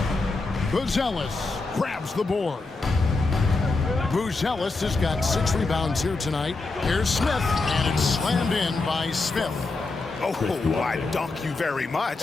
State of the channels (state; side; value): quieter; right; 3.6 dB